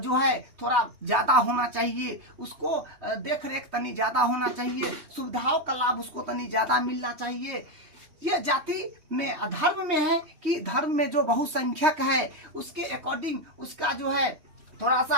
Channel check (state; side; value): late; left; 3.2 ms